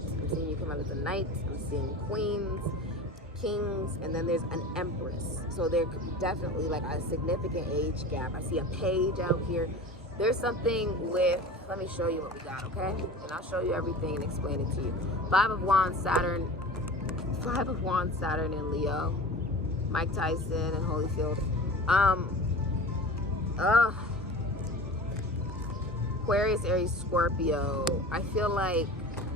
I'm seeing you come out as a knight. I'm seeing queens. kings, and then there's an empress. So there could be definitely like a significant age gap. I see a page out here. There's something with, let me show you what we got, okay? And I'll show you everything and explain it to you. 5 of Wands, Saturn in Leo. Mike Tyson and Holyfield. Aquarius, Aries, Scorpio. I feel like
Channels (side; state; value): both; normal; correlation 0.35